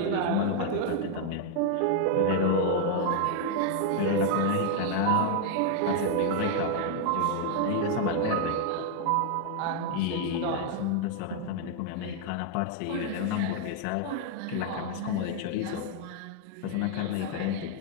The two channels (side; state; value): both; different; correlation 0.00